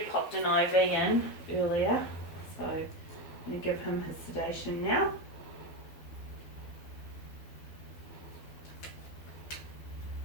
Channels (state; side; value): late; right; 12 ms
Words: popped an IV in earlier, so I'm going to give him his sedation now.